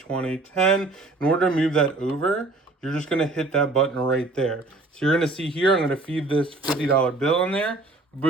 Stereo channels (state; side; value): quieter; left; 3.0 dB